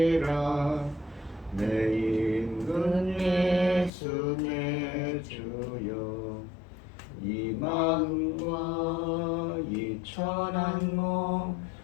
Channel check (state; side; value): drops out; right; at 3.9 s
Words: 내 임금 예수 내 주여 이 마음과 이 천한 몸